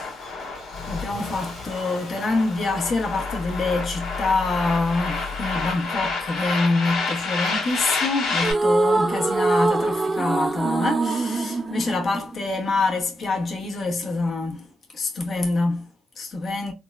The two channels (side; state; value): both; normal; correlation 0.84